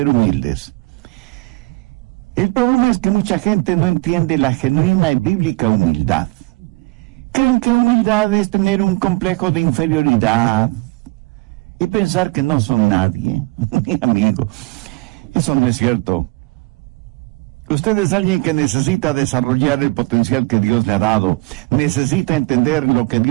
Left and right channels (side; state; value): left; quieter; 24.1 dB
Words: humildes. El problema es que mucha gente no entiende la genuina y bíblica humildad. Creen que humildad es tener un complejo de inferioridad y pensar que no son nadie. Mi amigo, eso no es cierto. Usted es alguien que necesita desarrollar el potencial que Dios le ha dado. Necesita entender lo que